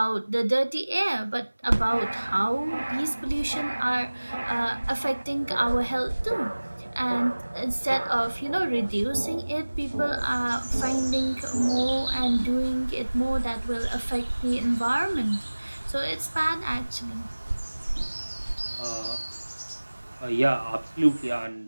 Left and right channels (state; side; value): inverted; both; correlation -1.00